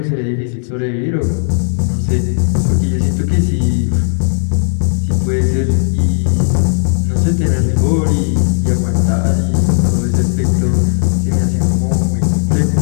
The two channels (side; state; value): right; silent; digital silence